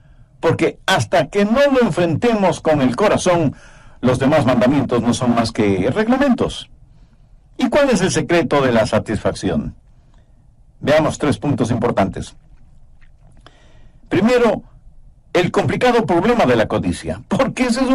Porque hasta que no lo enfrentemos con el corazón, los demás mandamientos no son más que reglamentos. ¿Y cuál es el secreto de la satisfacción? Veamos 3 puntos importantes. Primero, el complicado problema de la codicia. Porque ese es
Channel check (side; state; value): both; identical; correlation 1.00